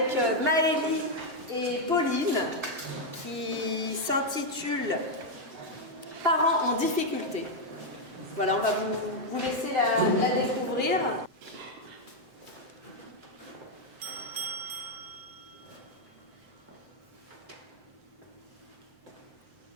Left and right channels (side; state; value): left; late; 7.7 ms